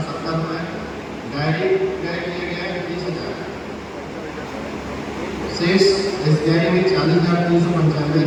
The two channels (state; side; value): identical; both; correlation 1.00